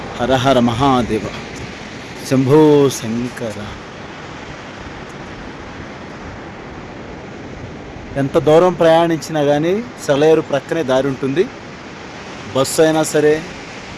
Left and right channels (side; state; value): both; identical; correlation 1.00